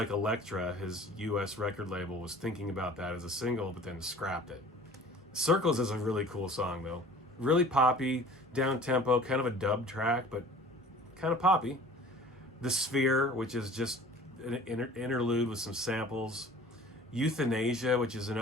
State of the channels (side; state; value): both; normal; correlation 0.46